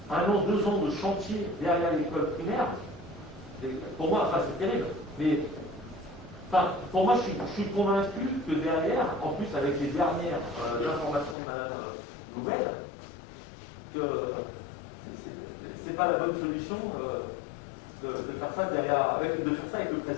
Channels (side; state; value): right; drops out; at 11.4 s